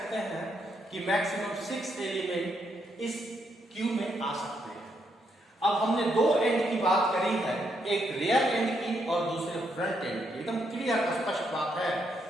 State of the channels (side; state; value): both; normal; correlation 0.77